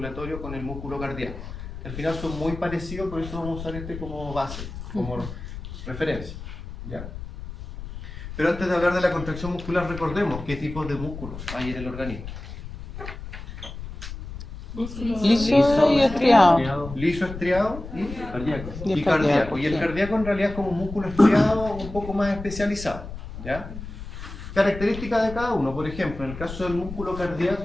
con el músculo cardíaco. Al final son muy parecidos, por eso vamos a usar este como base, como referencia. ¿Ya? Pero antes de hablar de la contracción muscular, recordemos qué tipos de músculos hay en el organismo. Liso y estriado. Liso, estriado y Y cardíaco. Y el sí. cardíaco en realidad es como un músculo estriado un poco más especializado. ¿Ya? Características de cada uno. Por ejemplo, en el caso del músculo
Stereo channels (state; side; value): noise; left; rumble, 11 dB below the sound